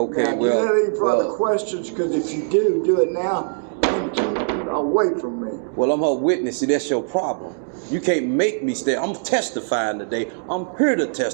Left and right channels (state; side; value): silent; left; digital silence